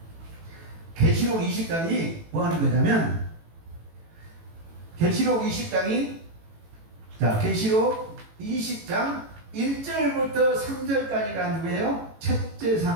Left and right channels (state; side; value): late; left; 18 ms